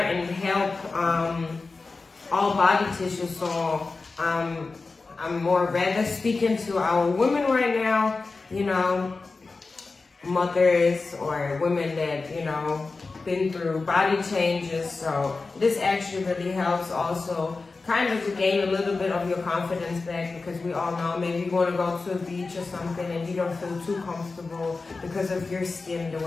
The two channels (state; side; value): quieter; right; 3.9 dB